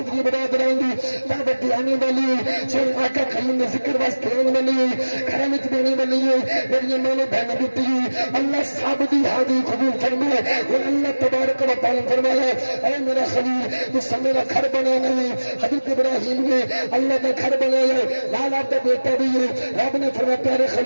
برادران دی دعوت آنے والی سن آقا کریم نے ذکر واسطے آنے والی کرامت دینے والی میری ماں بہن بیٹی اللہ صاحب دی حاضری قبول فرمائے اور اللہ تبارک و تعالی فرمایا اے میرا خلیل تو سب میرا گھر بنا نہیں حضرت ابراہیم نے اللہ کا گھر بنایا لال آپ کا بیٹا بھی ہے رب نے فرمایا پیارے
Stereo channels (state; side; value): inverted; both; correlation -1.00